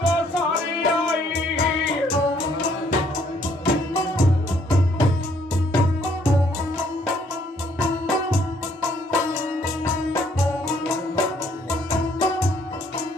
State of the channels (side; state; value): both; normal; correlation 0.66